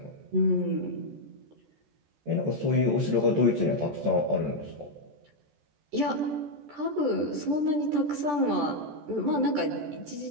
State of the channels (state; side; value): late; left; 14 ms